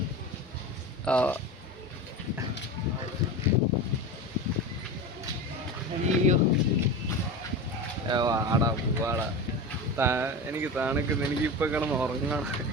വാടാ പോവാടാ. എനിക്ക് തണുക്കുന്നു. എനിക്കിപ്പൊ കിടന്ന് ഉറങ്ങണം.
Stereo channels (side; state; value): both; normal; correlation 0.27